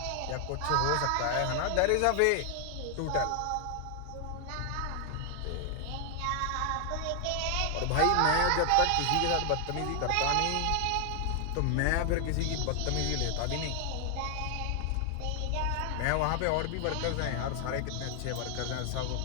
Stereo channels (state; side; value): different; both; correlation 0.00